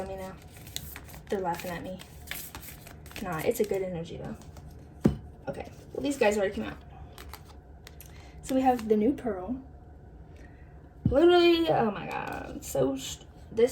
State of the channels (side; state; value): both; identical; correlation 1.00